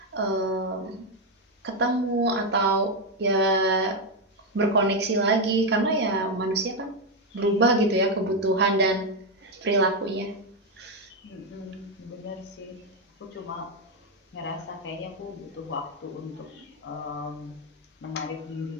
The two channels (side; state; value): both; normal; correlation 0.05